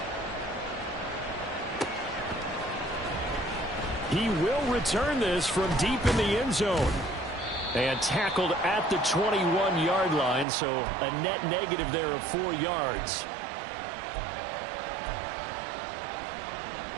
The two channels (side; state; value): left; drops out; at 10.5 s